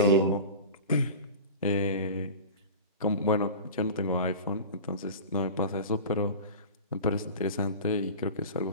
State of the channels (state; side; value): inverted; both; correlation -0.33